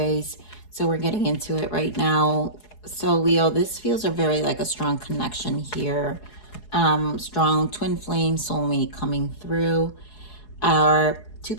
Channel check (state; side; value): late; right; 4.8 ms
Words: So we're getting into it right now. So Leo, this feels very like a strong connection here. Strong twin flame soulmate coming through. Are two